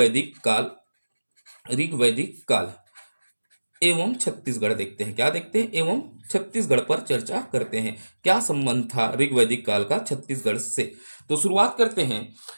काल। ऋग्वैदिक काल एवं छत्तीसगढ़ देखते हैं। क्या देखते हैं? एवं छत्तीसगढ़ पर चर्चा करते हैं। क्या संबंध था ऋग्वैदिक काल का छत्तीसगढ़ से? तो शुरुआत करते हैं।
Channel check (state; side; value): inverted; both; correlation -1.00